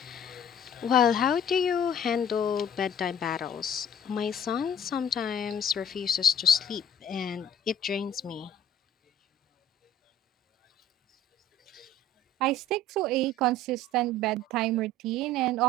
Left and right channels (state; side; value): normal; both; correlation 0.49